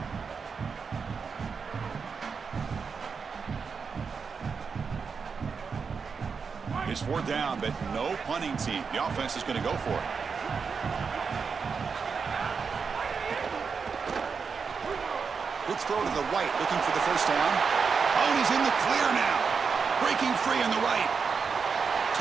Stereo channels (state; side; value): quieter; left; 5.6 dB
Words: It's 4th down, but no punting team. The offense is going to go for it. Quick throw to the right, looking for the first down. Oh, and he's in the clear now. Breaking free on the right.